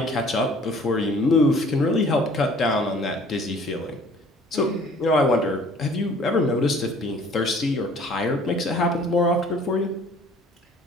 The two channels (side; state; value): both; normal; correlation 0.53